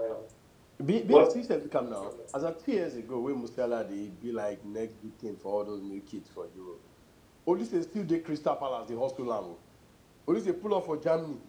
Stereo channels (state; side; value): identical; both; correlation 1.00